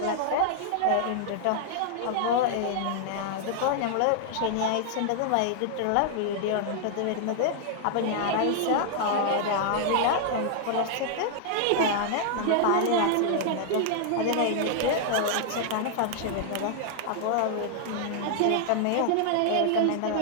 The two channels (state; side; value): different; both; correlation -0.01